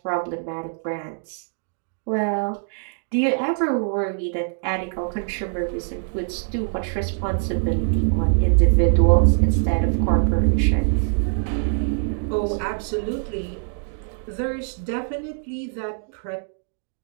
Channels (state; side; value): silent; left; digital silence